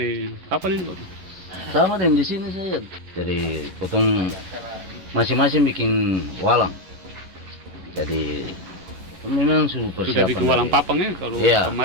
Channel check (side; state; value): left; late; 11 ms